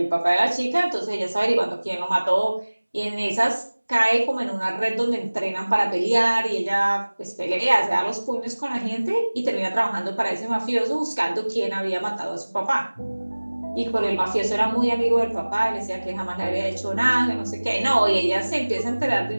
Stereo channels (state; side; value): inverted; both; correlation -1.00